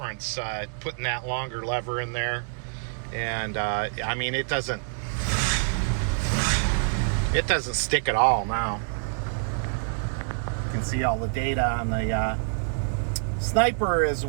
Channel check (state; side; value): silent; left; digital silence